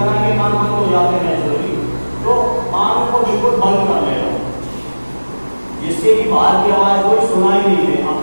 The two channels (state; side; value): inverted; both; correlation -1.00